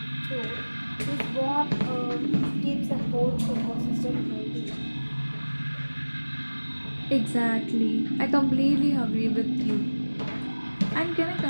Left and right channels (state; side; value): inverted; both; correlation -1.00